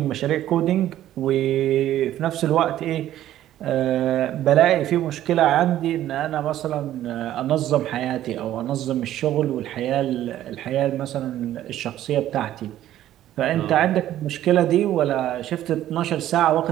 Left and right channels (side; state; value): left; quieter; 12.8 dB